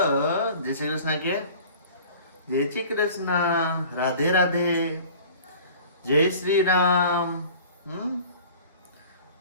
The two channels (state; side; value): inverted; both; correlation -0.44